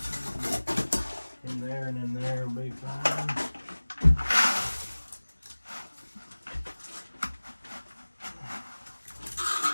in there and in there will be fine.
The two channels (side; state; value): both; inverted; correlation -1.00